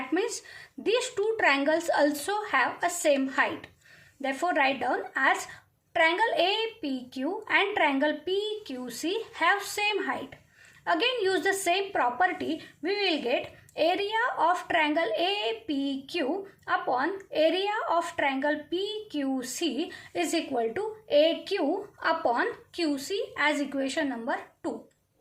means these two triangles also have a same height. Therefore, write down as triangle APQ and triangle PQC have same height. Again, use the same property. We will get area of triangle APQ upon area of triangle PQC is equal to AQ upon QC as equation number 2.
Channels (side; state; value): both; identical; correlation 1.00